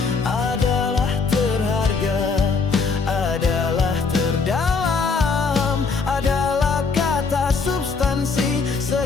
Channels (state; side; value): quieter; right; 4.7 dB